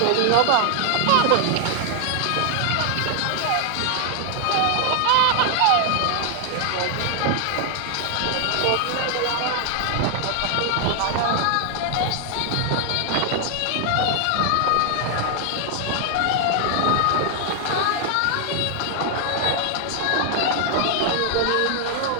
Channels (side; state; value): both; different; correlation 0.00